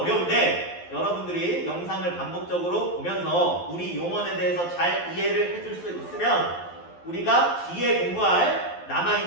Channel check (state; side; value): late; right; 12 ms